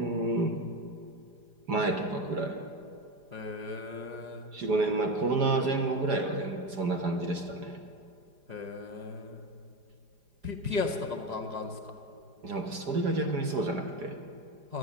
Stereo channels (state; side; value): late; left; 4.9 ms